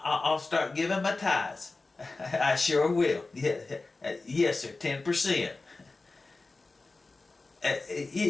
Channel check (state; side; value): quieter; right; 3.5 dB